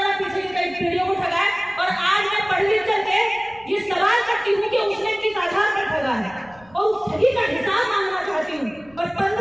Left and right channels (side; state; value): left; noise; rumble, 28 dB below the sound